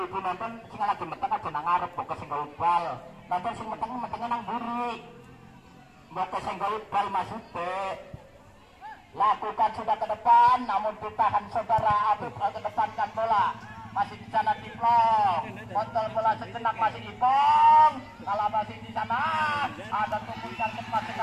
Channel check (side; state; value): both; identical; correlation 1.00